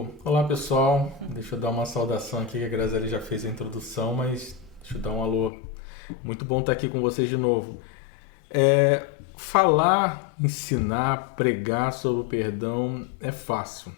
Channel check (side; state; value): right; drops out; at 5.5 s